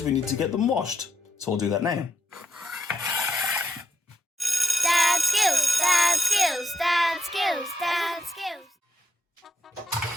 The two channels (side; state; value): both; normal; correlation 0.83